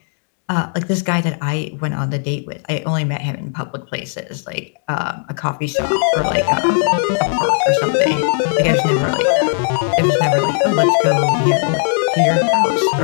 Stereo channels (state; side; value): silent; right; digital silence